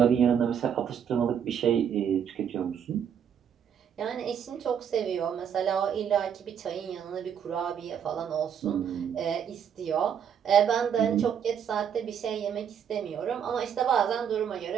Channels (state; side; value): quieter; left; 8.2 dB